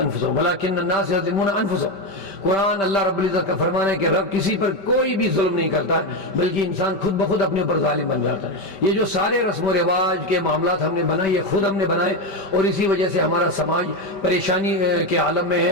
ولکن الناس یظلمون انفسهم۔ قرآن اللہ رب العزت کا فرمان ہے کہ رب کسی پر کوئی بھی ظلم نہیں کرتا ہے، بلکہ انسان خود بخود اپنے اوپر ظالم بن جاتا ہے۔ یہ جو سارے رسم و رواج کے معاملات ہم نے بنائے یہ خود ہم نے بنائے، اور اسی وجہ سے ہمارا سماج پریشانی کے عالم میں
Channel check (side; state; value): right; late; 5.1 ms